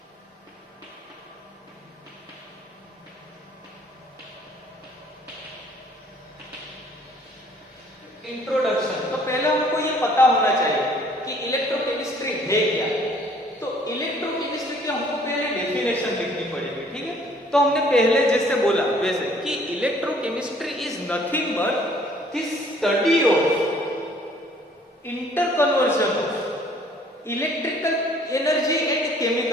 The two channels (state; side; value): normal; both; correlation 0.58